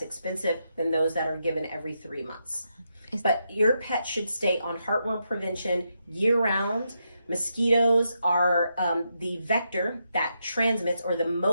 expensive than those that are given every 3 months. But your pet should stay on heartworm prevention year round. Mosquitoes are the vector that transmits, or the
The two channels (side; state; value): both; inverted; correlation -0.83